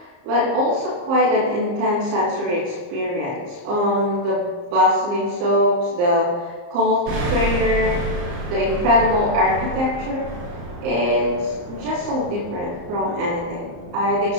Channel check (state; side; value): late; left; 34 ms